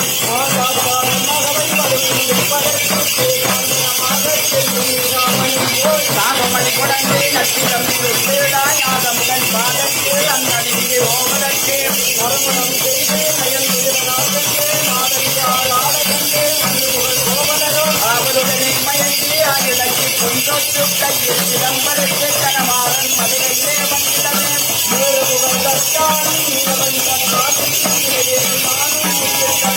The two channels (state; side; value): identical; both; correlation 1.00